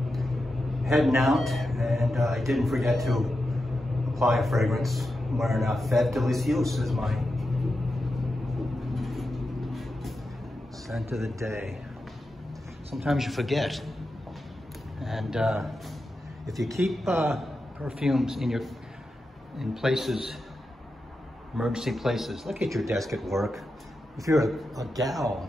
Heading out, and I didn't forget to apply a fragrance. I'm wearing Fête Delicieuse as my scent of the day. Sometimes you forget, and if you keep perfumes in places, emergency places, like at your desk at work. If you're a gal,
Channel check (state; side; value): normal; both; correlation 0.89